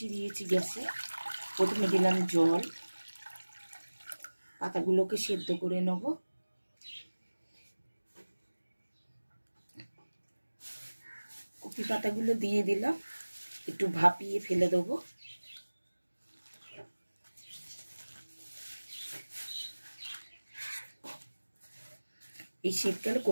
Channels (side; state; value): both; inverted; correlation -1.00